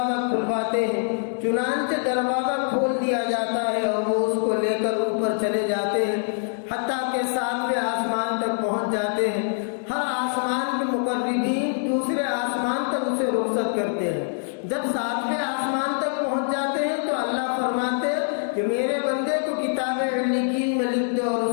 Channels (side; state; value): right; silent; 62 dB below the other